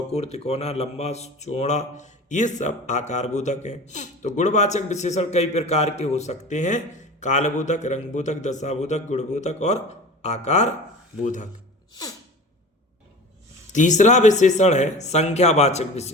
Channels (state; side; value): normal; both; correlation 0.36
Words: तिकोना, लंबा, चौड़ा, ये सब आकार बोधक हैं। तो गुणवाचक विशेषण कई प्रकार के हो सकते हैं, कालबोधक, रंगबोधक, दशाबोधक, गुणबोधक और आकार बोधक। तीसरा विशेषण है संख्यावाचक